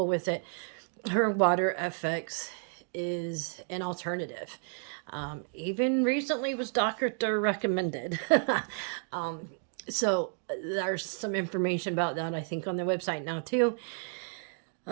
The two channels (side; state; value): left; silent; 57 dB below the other